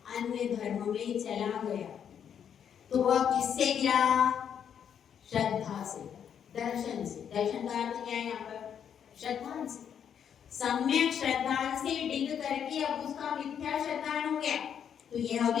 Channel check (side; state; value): right; quieter; 8.4 dB